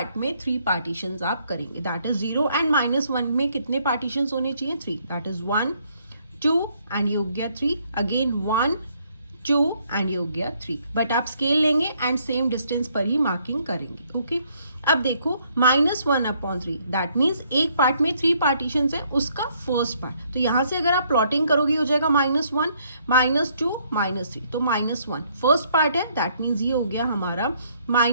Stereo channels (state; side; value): inverted; both; correlation -0.68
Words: में 3 पार्टीशंस आप करेंगे। दैट इज 0 एंड -1 में कितने पार्टीशंस होने चाहिए? 3। दैट इज 1 2 एंड ये हो गया 3, अगेन 1 2 एंड ये हो गया 3। बट आप स्केल लेंगे एंड सेम डिस्टेंस पर ही मार्किंग करेंगे। ओके, अब देखो -1/3 दैट मीन्स एक पार्ट में 3 पार्टीशंस है, उसका फर्स्ट पार्ट। तो यहां से अगर आप प्लॉटिंग करोगे हो जाएगा -1 -2 -3, तो -1 फर्स्ट पार्ट है, दैट मीन्स ये हो गया हमारा